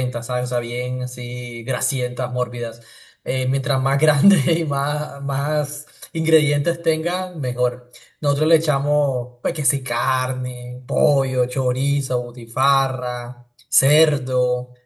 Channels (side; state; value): both; identical; correlation 1.00